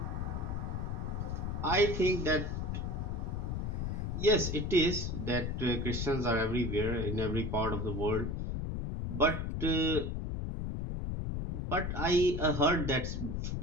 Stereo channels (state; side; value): noise; left; rumble, 2 dB below the sound